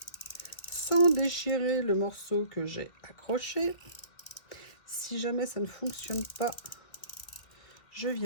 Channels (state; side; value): late; right; 2.3 ms